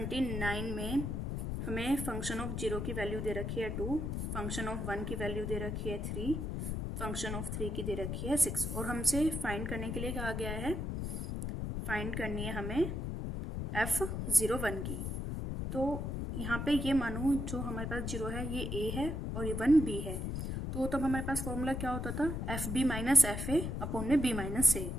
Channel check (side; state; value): left; noise; rumble, 3 dB below the sound